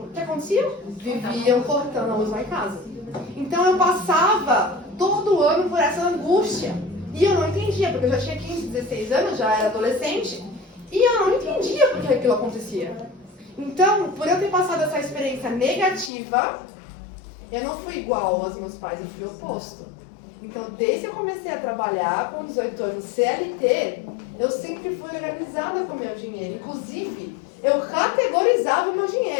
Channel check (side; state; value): right; drops out; at 16.1 s